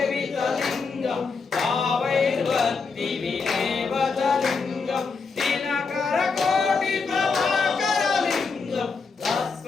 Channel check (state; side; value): quieter; right; 4.8 dB